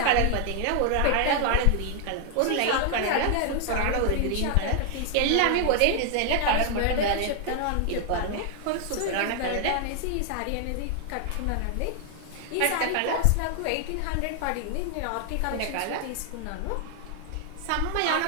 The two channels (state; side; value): different; both; correlation 0.00